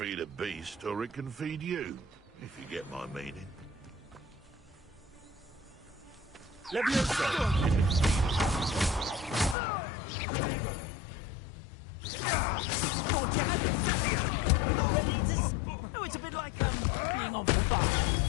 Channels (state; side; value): drops out; right; at 9.6 s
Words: a beast, or it can feed you, if you get my meaning. Oh, it's a bit like being on fire,